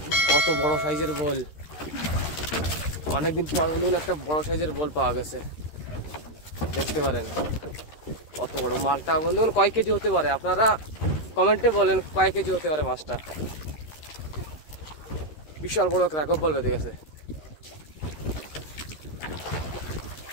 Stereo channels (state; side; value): late; right; 13 ms